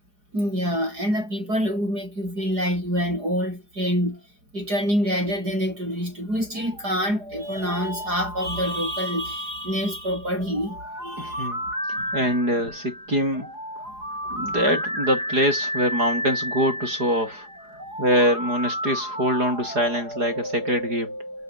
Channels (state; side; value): late; left; 4.8 ms